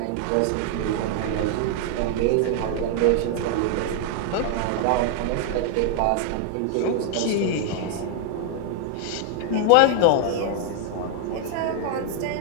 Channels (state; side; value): different; both; correlation 0.00